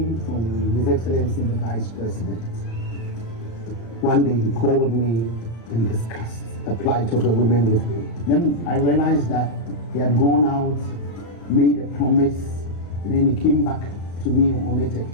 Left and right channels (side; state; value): right; late; 35 ms